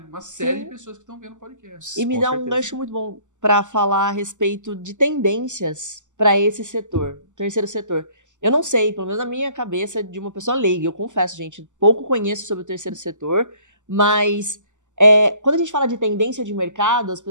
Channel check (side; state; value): left; late; 0.85 ms